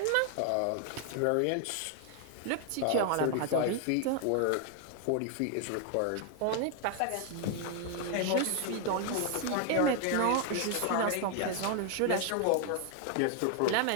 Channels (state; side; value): different; both; correlation 0.00